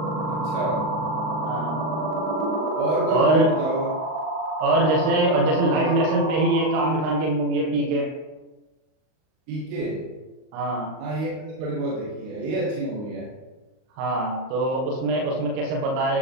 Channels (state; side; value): late; left; 38 ms